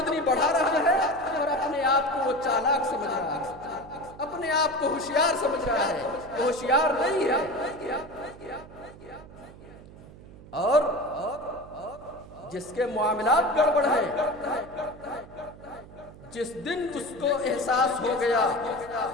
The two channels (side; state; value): right; noise; hum, 19 dB below the sound